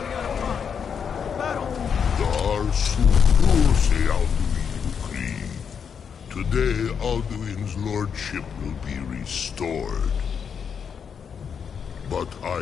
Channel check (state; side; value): quieter; right; 7.0 dB